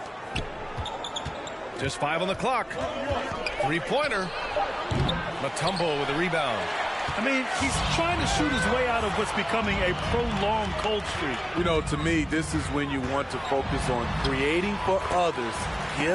Just 5 on the clock. Three-pointer. Mutombo with a rebound. I mean, he's trying to shoot his way out of what's becoming a prolonged cold streak. You know, to me, this is when you want to focus on creating for others.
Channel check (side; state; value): both; identical; correlation 1.00